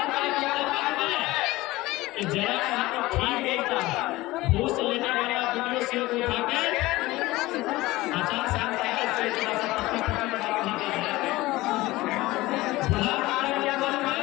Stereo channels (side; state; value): right; quieter; 19.0 dB